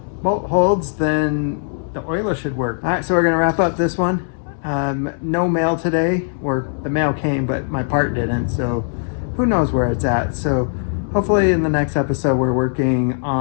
bolt holds, then the oiler should work. All right, so we're gonna wrap up this one. No mail today, or the mail came, but my part didn't, so who knows where it's at. So hopefully in the next episode, we're working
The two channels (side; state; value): right; silent; 66 dB below the other